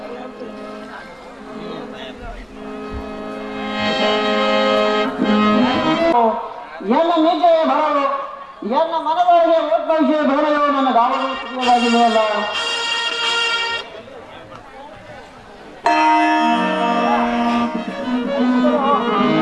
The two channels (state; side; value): identical; both; correlation 1.00